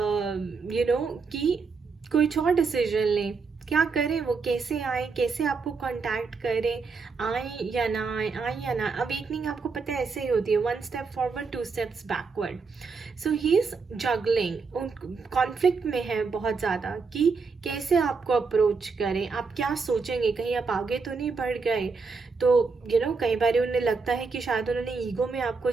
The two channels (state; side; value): quieter; left; 4.7 dB